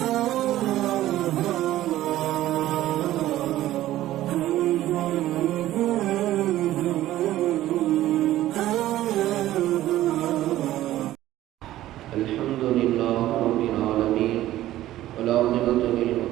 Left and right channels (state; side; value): quieter; left; 14.4 dB